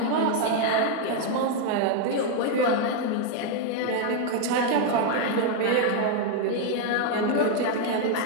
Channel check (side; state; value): both; different; correlation 0.00